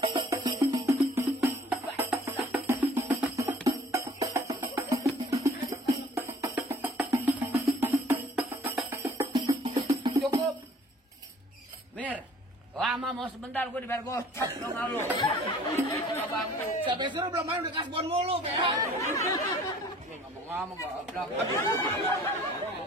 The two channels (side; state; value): both; normal; correlation 0.53